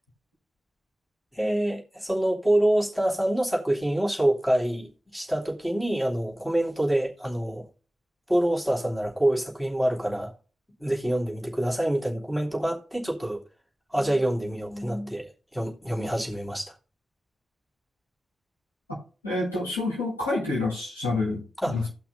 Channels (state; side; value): normal; both; correlation 0.96